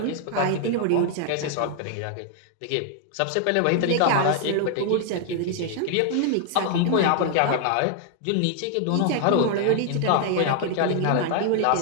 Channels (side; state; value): both; different; correlation 0.00